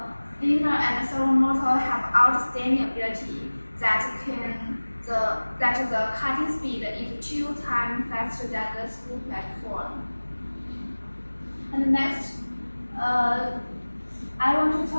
linear and servo motor have outstanding ability that the cutting speed is 2 times faster than the screw platform. And next, I want to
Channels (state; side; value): inverted; both; correlation -1.00